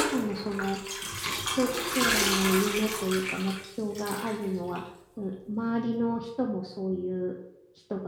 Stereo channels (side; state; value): both; identical; correlation 1.00